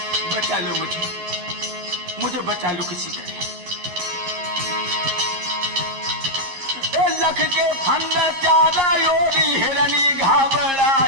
बचा लो मुझे बचा लो किसी तरह। लख के फंद चारा योरी हिरनी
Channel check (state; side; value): late; left; 11 ms